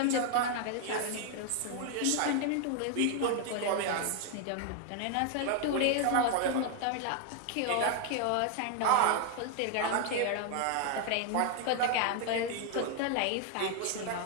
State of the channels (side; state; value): both; different; correlation 0.00